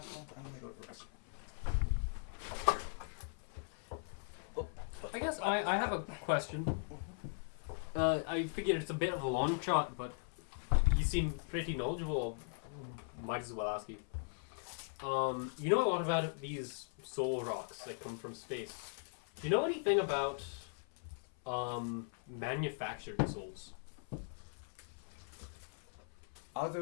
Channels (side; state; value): right; silent; 51 dB below the other